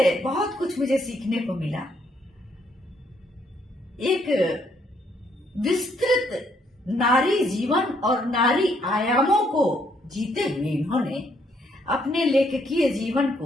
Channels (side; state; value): both; normal; correlation 0.71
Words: बहुत कुछ मुझे सीखने को मिला। एक विस्तृत नारी जीवन और नारी आयामों को जीते हुए इन्होंने अपने लेखकीय जीवन